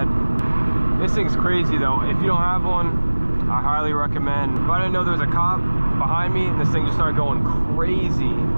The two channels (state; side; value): inverted; both; correlation -1.00